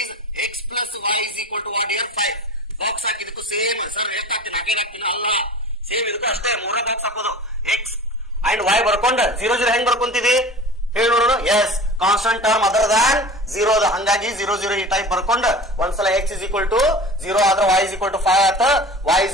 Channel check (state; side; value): normal; both; correlation 0.37